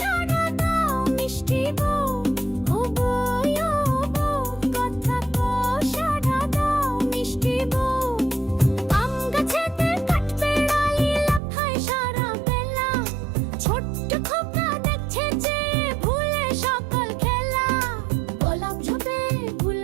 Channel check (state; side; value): drops out; left; at 11.4 s